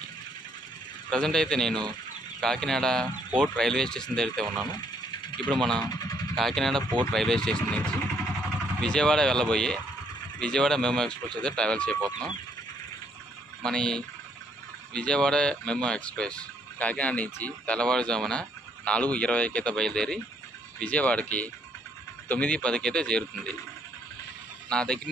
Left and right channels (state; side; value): normal; both; correlation 0.69